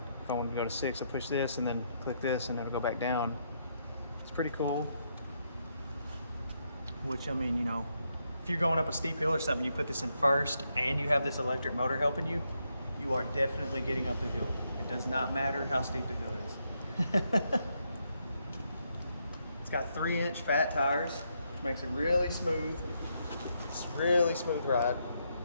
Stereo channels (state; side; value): inverted; both; correlation -0.78